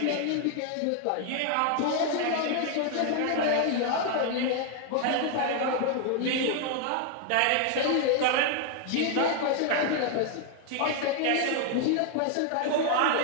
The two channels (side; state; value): both; different; correlation 0.01